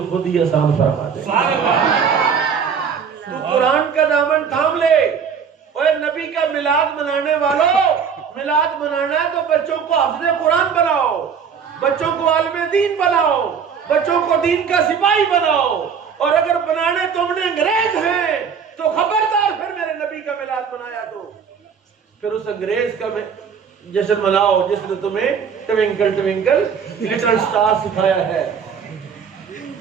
خود ہی آسان فرما دے۔ تو قرآن کا دامن تھام لے، منانے والوں، میلاد منانا ہے تو بچوں کو حافظ قرآن بناؤ، بچوں کو عالم دین بناؤ، بچوں کو دین کا سپاہی بناؤ۔ اور اگر بنانے تم نے انگریز ہیں تو خبردار پھر میرے نبی کا میلاد منایا تو پھر اس انگریز کا جشن مناؤ جس نے تمہیں ٹوینکل ٹوینکل لٹل سٹار سکھایا ہے،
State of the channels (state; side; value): quieter; left; 6.7 dB